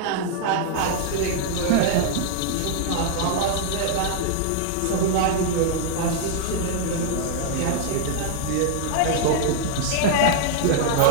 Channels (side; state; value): both; different; correlation -0.01